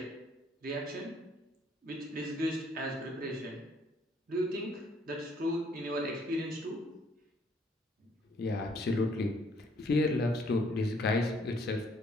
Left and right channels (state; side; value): normal; both; correlation 0.65